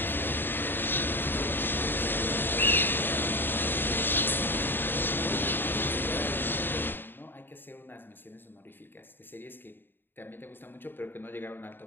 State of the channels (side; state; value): right; late; 0.097 ms